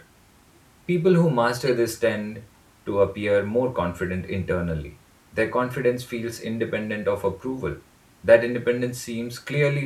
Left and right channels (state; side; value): identical; both; correlation 1.00